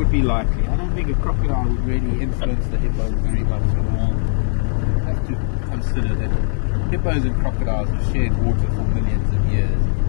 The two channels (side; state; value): right; silent; 60 dB below the other